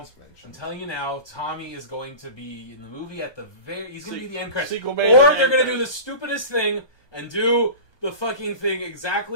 mentioned. I'm telling you now, Tommy is going to be in the movie at the very. He's going to be the end credits. Sequel Or bait they're and going to do end the stupidest thing and do the fucking thing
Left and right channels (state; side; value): late; right; 1.2 ms